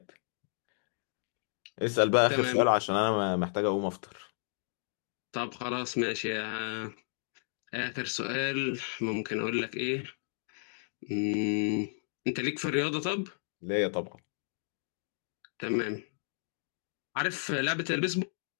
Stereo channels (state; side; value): silent; right; digital silence